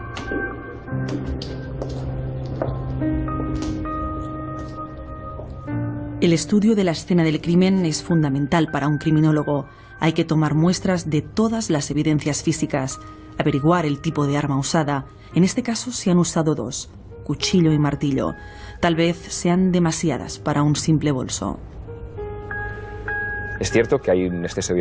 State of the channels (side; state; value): both; identical; correlation 1.00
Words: El estudio de la escena del crimen es fundamental para un criminólogo. Hay que tomar muestras de todas las evidencias físicas, averiguar el tipo de arma usada. En este caso se han usado dos, cuchillo y martillo. Tal vez sean demasiadas para un simple bolso. Es cierto que hay un exceso de